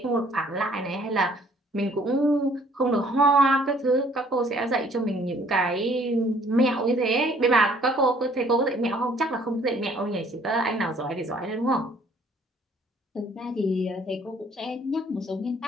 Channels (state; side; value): normal; both; correlation 0.59